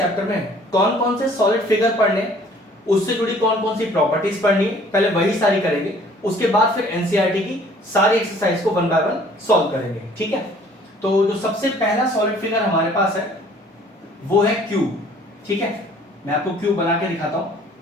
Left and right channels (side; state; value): both; normal; correlation 0.55